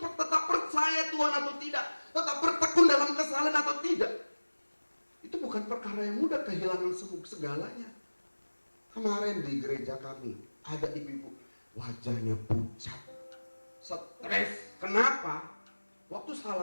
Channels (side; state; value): both; inverted; correlation -1.00